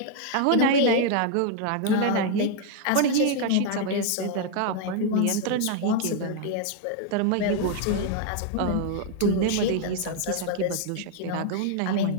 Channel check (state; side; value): different; both; correlation 0.00